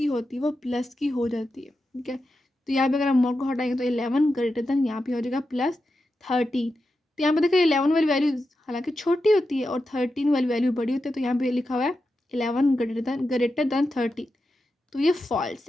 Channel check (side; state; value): both; normal; correlation 0.89